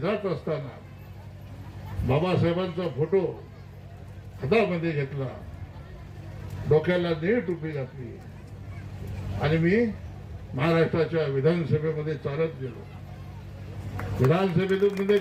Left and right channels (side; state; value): both; identical; correlation 1.00